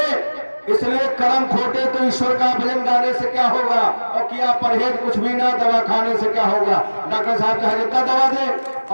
इसलिए कर्म खोटे तो ईश्वर का भजन गाने से क्या होगा, और किया परहेज कुछ भी ना, दवा खाने से क्या होगा। डॉक्टर साहब चाहे जितना दवा दे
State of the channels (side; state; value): both; inverted; correlation -1.00